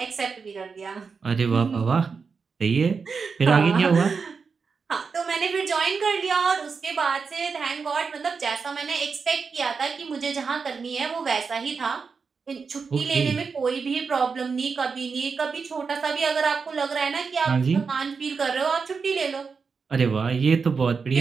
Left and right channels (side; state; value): left; quieter; 5.2 dB